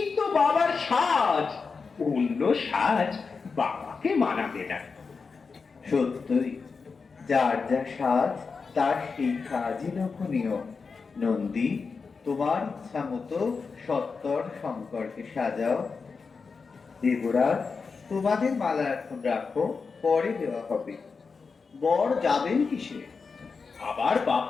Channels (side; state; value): right; quieter; 4.9 dB